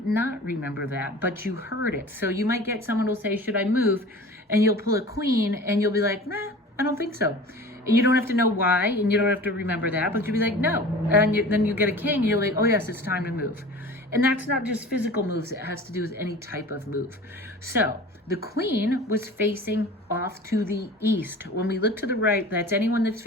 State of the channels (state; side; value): normal; both; correlation 0.40